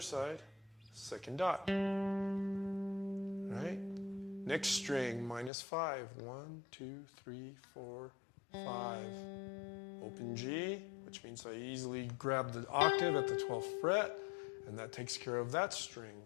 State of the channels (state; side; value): drops out; right; at 5.5 s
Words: 2nd dot. All right. Next string, -5. 1, 2, 3, 4, 5. Open G, which means I easily grab the octave at the 12th fret. And that takes care of that string.